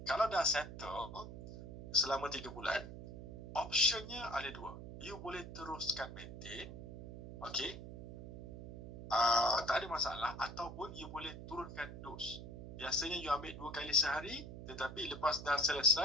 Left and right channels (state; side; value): noise; right; hum, 10 dB below the sound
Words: kalau dah settle selama 3 bulan, optionnya ada 2. You boleh teruskan maintain, okay, tak ada masalah, ataupun you boleh turunkan dos. Biasanya you ambil 2 kali sehari, tetapi lepas dah